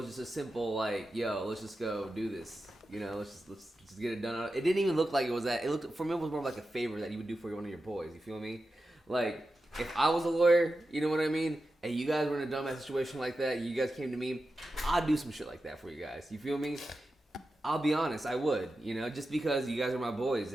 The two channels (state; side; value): normal; both; correlation 0.91